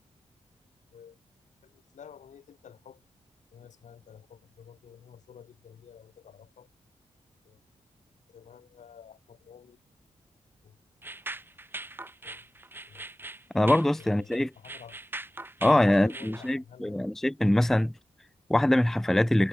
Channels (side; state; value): both; normal; correlation 0.98